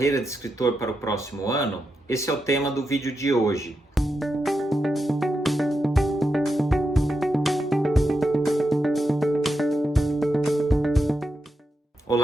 de escritor para o próximo ano? Esse é o tema do vídeo de hoje.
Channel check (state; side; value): normal; both; correlation 0.86